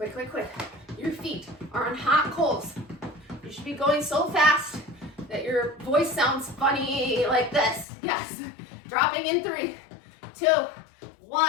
quick, quick. Your feet are on hot coals. You should be going so fast that your voice sounds funny like this. Yes. Dropping in 3, 2,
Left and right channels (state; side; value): drops out; right; at 7.9 s